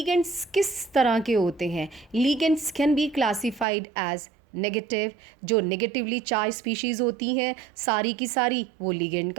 किस तरह के होते हैं? Ligands can be classified as negative. जो नेगेटिवली चार्ज स्पीशीज़ होती हैं सारी की सारी वो लिगेंड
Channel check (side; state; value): left; drops out; at 3.7 s